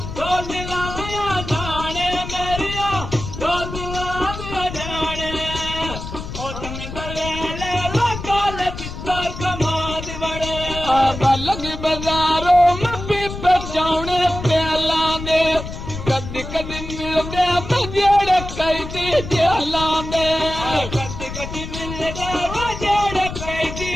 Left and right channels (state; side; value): noise; left; rumble, 9 dB below the sound